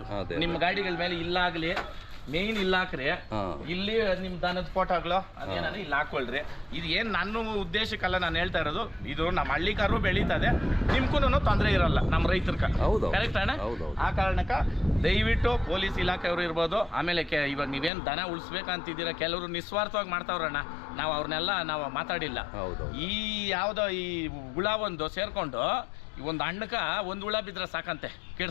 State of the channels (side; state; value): right; drops out; at 17.9 s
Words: ನಿಮ್ಮ ಗಾಡಿಗಳ ಮೇಲೆ ಇಲ್ಲಾಗ್ಲಿ ಮೇನ್ ಇಲ್ಲ ಹಾಕ್ರಿ, ಇಲ್ಲಿ ನಿಮ್ ದನದ ಫೋಟೋಗಳು ಅದೇನ ಇಲ್ಲಿ ಹಾಕೊಳ್ರಿ. ಇದು ಏನ್ ನನ್ನ ಉದ್ದೇಶಕ್ಕಲ್ಲ ನಾನು ಹೇಳ್ತಾ ಇರೋದು, ಇದು ನಮ್ಮ ಹಳ್ಳಿಕಾರು ಬೆಳೀತದೆ, ನಿಮ್ಗೂ ತೊಂದರೆ ಇರಲ್ಲ ನಮ್ಮ ರೈತರ್ಕ. ಕರೆಕ್ಟ್ ಅಣ್ಣ? ಆ ಕಾರಣಕ್ಕ ದಯವಿಟ್ಟು ಪೊಲೀಸ್ ಇಲಾಖೆಯವರು ಇರ್ಬೋದು, ಆಮೇಲೆ ಇವಾಗ ನೀವೇನ್ ದನ ಉಳಿಸ್ಬೇಕಂತಿದ್ದೀರಾ, ಕೆಲವರು ನಿಸ್ವಾರ್ಥವಾಗಿ ಮಾಡ್ತಾವ್ರಣ್ಣ, ನಾವು ಅವ್ರನ್ನೆಲ್ಲ ನಾವು ಮಾತಾಡಿಲ್ಲ. ಈ ಯಾವ್ದೋ ಈ ಹುಳ ಒಂದು ಸೇರ್ಕೊಂಡು ಒಂದು ಹಣ್ಣಕ್ಕ ಒಂದು ಹುಳ ಬಿದ್ರೆ ಸಾಕಂತೆ